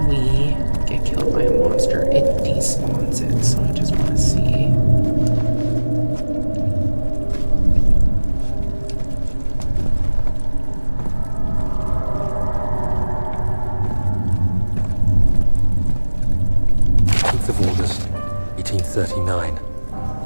we get killed by a monster, it despawns it, so I just want to see. Of August, 1839.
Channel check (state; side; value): inverted; both; correlation -1.00